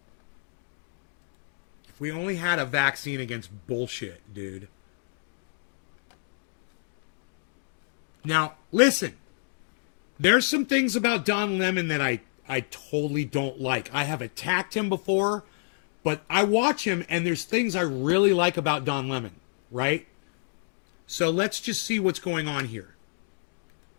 we only had a vaccine against bullshit, dude. Now, listen. There's some things about Don Lemon that I I totally don't like. I have attacked him before, but I watch him and there's things I really like about Don Lemon, right? So let's just see what's going on here.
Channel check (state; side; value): silent; right; digital silence